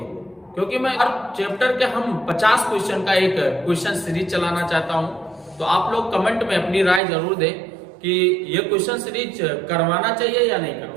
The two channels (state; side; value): drops out; left; at 7.0 s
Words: क्योंकि मैं हर चैप्टर के हम 50 क्वेश्चन का एक क्वेश्चन सीरीज चलाना चाहता हूं। तो आप लोग कमेंट में अपनी राय जरूर दें कि ये क्वेश्चन सीरीज करवाना चाहिए या नहीं करवाना